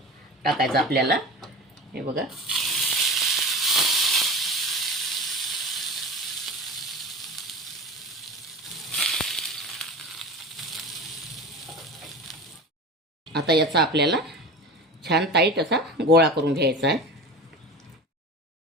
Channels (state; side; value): normal; both; correlation 0.32